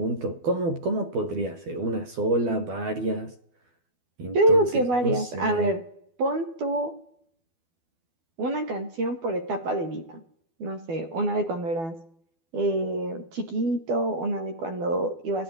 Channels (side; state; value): left; late; 12 ms